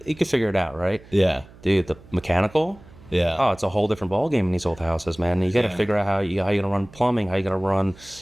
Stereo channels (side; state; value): right; noise; hum, 22 dB below the sound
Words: can figure it out, right? Yeah, dude. The mechanical, it's a whole different ball game in these old houses, man. You got to figure out how you're gonna run plumbing, how you're gonna run,